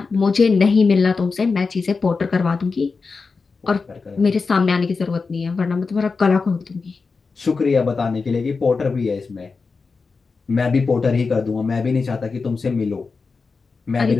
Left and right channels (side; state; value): right; quieter; 4.5 dB